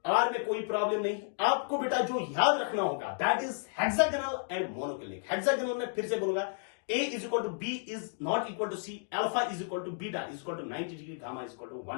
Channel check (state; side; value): silent; right; digital silence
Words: आर में कोई प्रॉब्लम नहीं। आपको बेटा जो याद रखना होगा that is hexagonal and monoclinic. Hexagonal में फिर से बोलूंगा, A is equal to B is not equal to C, alpha is equal to beta is equal to 90 degree, gamma is equal to